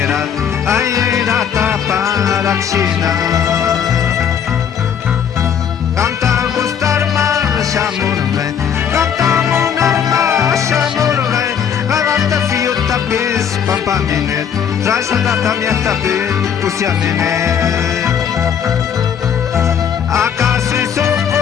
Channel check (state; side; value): quieter; right; 8.0 dB